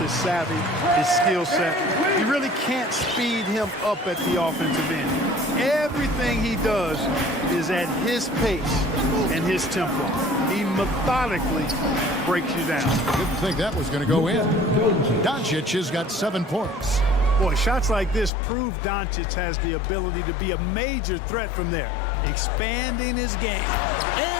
his savvy, his skill set. You really can't speed him up at the offensive end. Everything he does is at his pace and his tempo. He methodically breaks you down. Didn't think that was going to go in. Doncic has got 7 points. Boy, shots like this prove Doncic has the ability to be a major threat from there, expanding his game.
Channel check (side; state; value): right; drops out; at 18.3 s